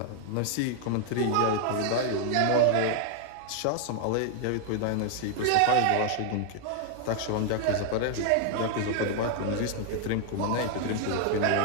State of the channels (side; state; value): both; different; correlation 0.00